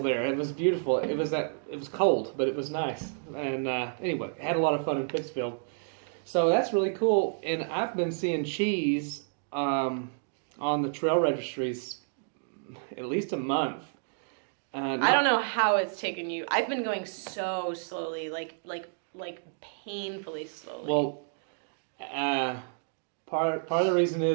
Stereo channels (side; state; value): left; silent; digital silence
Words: It was beautiful. It was cold, but it was nice. And anyway, had a lot of fun in Pittsfield. So that's really cool. And I've been seeing cheese on the trail registries at least a month. I don't know how it's taken you. I've been going so slowly, like painfully slowly. Well, part of the reason